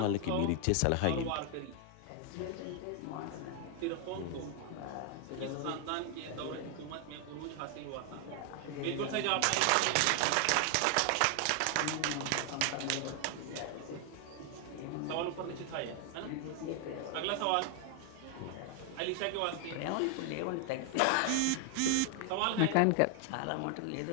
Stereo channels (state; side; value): different; both; correlation 0.00